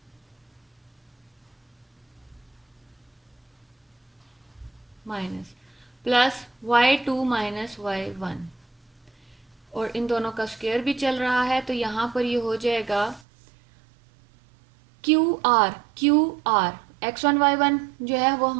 minus plus y2 minus y1, और इन दोनों का स्क्वायर भी चल रहा है, तो यहाँ पर ये हो जाएगा क्यू आर x1 y1 जो है वो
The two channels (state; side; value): drops out; left; at 13.2 s